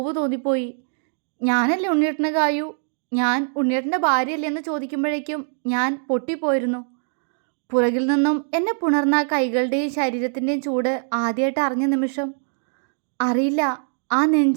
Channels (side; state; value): left; silent; digital silence